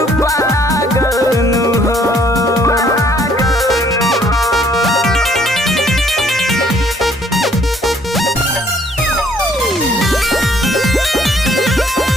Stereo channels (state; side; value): normal; both; correlation 0.63